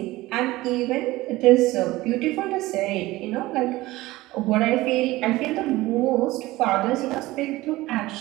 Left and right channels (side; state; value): left; quieter; 18.5 dB